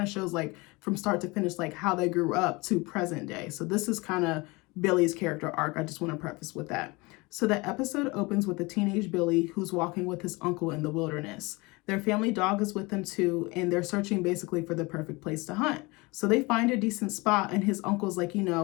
of shows like from start to finish, like how they grew up to present day. So this is kind of Billy's character arc. I just want to preface with that. So the episode opens with a teenage Billy who's walking with his uncle in the wilderness. Their family dog is with them too, and they're searching basically for the perfect place to hunt. So they find a decent spot, and his uncle's like, you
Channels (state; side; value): quieter; right; 24.8 dB